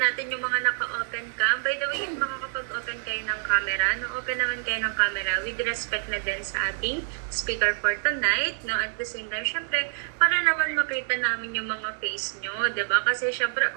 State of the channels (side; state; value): left; silent; digital silence